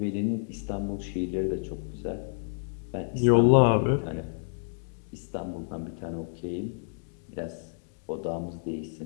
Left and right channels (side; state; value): right; silent; digital silence